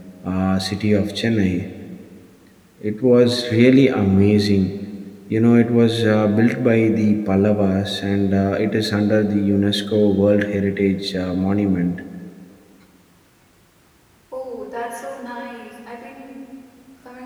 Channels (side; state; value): both; identical; correlation 1.00